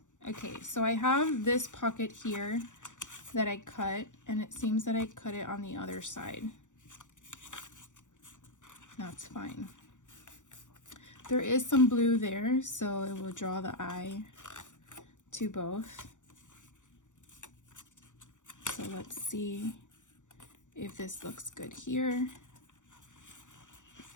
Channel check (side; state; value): right; late; 0.86 ms